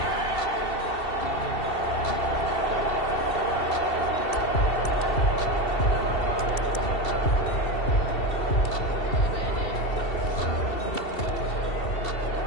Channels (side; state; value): right; late; 2.7 ms